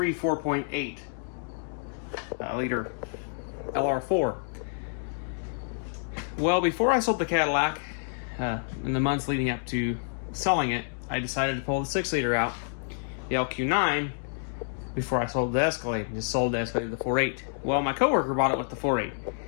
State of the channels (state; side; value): silent; right; digital silence